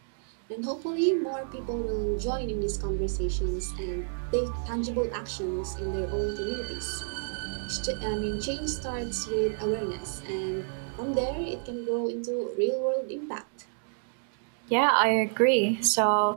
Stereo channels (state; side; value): silent; left; digital silence